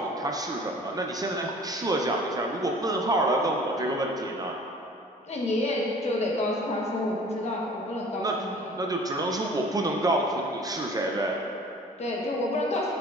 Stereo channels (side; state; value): both; normal; correlation 0.48